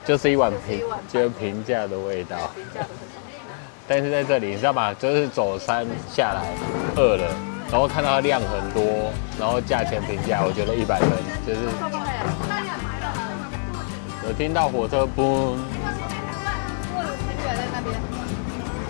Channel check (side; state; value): right; silent; digital silence